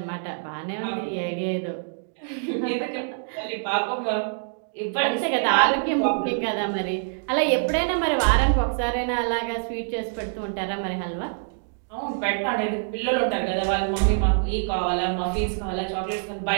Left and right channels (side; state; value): left; silent; digital silence